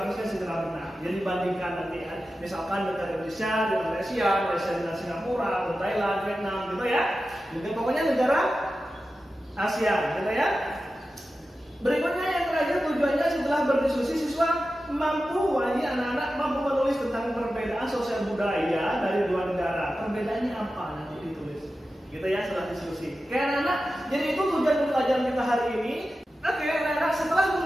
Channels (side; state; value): both; normal; correlation 0.93